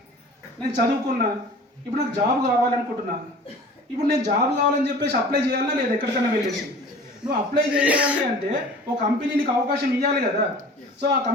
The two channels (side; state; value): both; normal; correlation 0.43